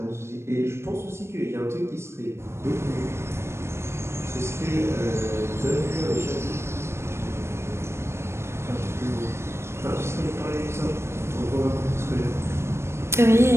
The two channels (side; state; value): left; late; 0.13 ms